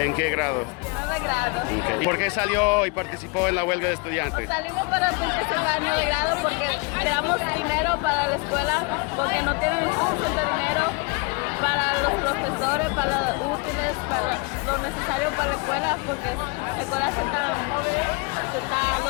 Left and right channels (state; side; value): quieter; right; 29.6 dB